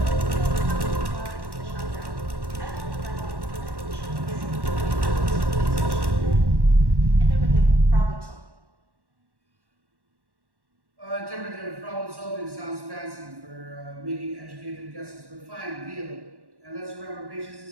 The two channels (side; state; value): left; late; 1.1 ms